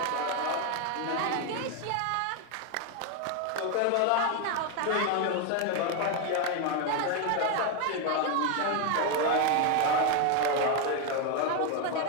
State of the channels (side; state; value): both; different; correlation 0.01